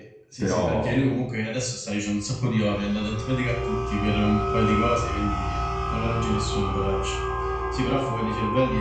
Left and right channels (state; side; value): identical; both; correlation 1.00